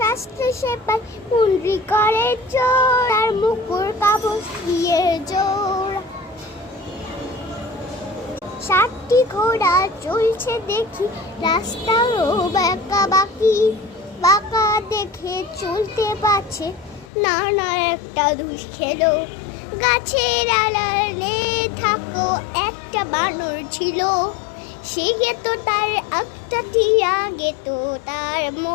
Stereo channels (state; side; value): drops out; right; at 17.1 s